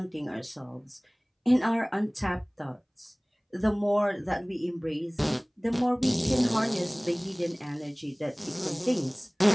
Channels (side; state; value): both; identical; correlation 1.00